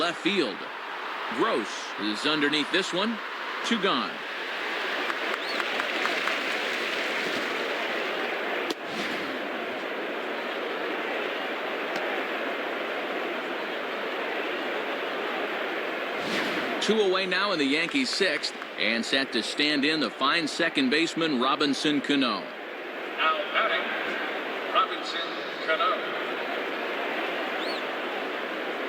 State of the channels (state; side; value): identical; both; correlation 1.00